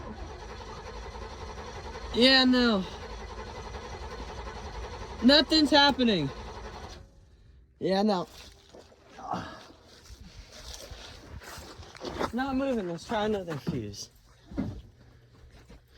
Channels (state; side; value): identical; both; correlation 1.00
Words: Yeah, no. Nothing's happening. Yeah, no. It's not moving. Let's try another fuse.